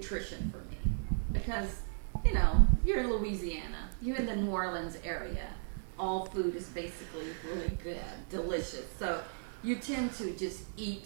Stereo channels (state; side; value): silent; left; 54 dB below the other